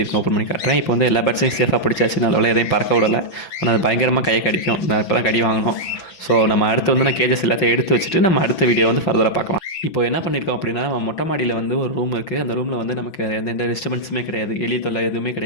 இருக்கும் ஓப்பன் பண்ணி காட்டுறேன். இப்போ எல்லா பேட்ஸையும் சேஃபாக பிடிச்சாச்சு. நல்ல எதையும் பறக்க விடலை. ஆனால் அது பயங்கரமாக கையை கடிக்கும். நான் இப்போ தான் கடி வாங்கணும். ஸோ நம்ம அடுத்து நான் கேஜஸ் எல்லாத்தையும் எடுத்து வச்சுட்டு நம்ம அடுத்த வீடியோ ஃபர்தராக பார்க்கலாம். இப்போ என்ன பண்ணியிருக்கோம் அப்படின்னா, நம்ம மொட்டை மாடியில் ஒரு ரூம் இருக்குது. அந்த ரூமில் நமக்கு எந்த டிஸ்டர்பன்ஸுமே கிடையாது. எலி தொல்லை எதுவுமே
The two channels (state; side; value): late; right; 5.9 ms